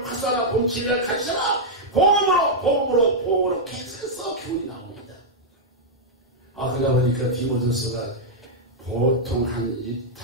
파사라. 복음 진리를 가르쳐라. 복음으로 계속해서 교훈이 나옵니다. 그러다 보니까 디모데후서가 보통 한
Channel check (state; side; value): normal; both; correlation -0.05